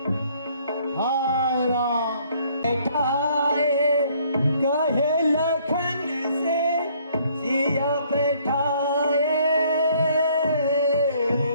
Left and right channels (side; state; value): both; inverted; correlation -0.62